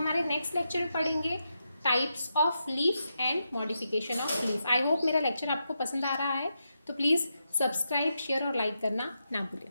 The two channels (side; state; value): both; inverted; correlation -0.85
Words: नेक्स्ट लेक्चर में पढ़ेंगे types of leaf and modification of leaf. I hope मेरा लेक्चर आपको पसंद आ रहा है, तो प्लीज़ सब्सक्राइब, शेयर और लाइक करना ना भूलें।